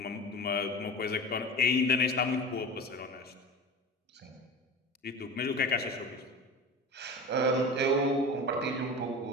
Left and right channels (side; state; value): both; normal; correlation 0.33